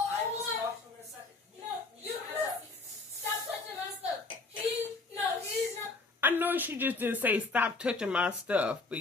will talk to him in a second. you stop touching my stuff. He's not. I know she just didn't say stop touching my stuff, but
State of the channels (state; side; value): quieter; right; 3.6 dB